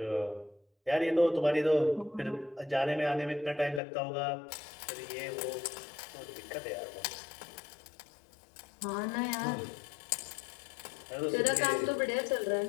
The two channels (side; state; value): right; drops out; at 3.8 s